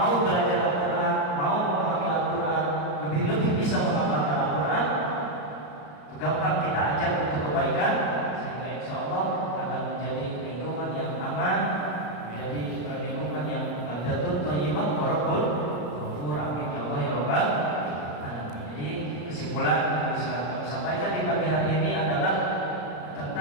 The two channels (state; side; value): late; right; 34 ms